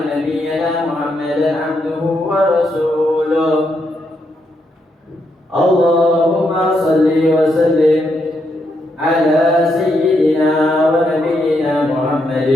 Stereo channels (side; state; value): both; normal; correlation 0.80